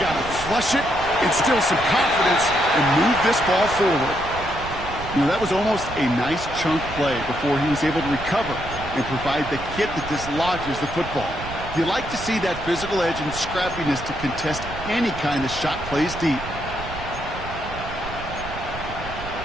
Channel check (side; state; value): right; noise; rumble, 11 dB below the sound